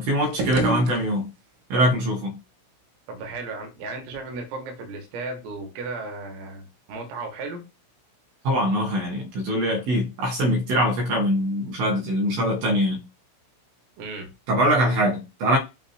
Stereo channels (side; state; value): left; late; 16 ms